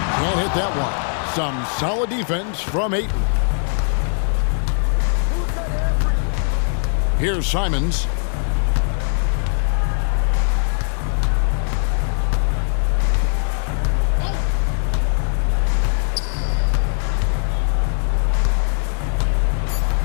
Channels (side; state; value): right; silent; 66 dB below the other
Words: Can't hit that one. Some solid defense from Ayton. Here's Simons.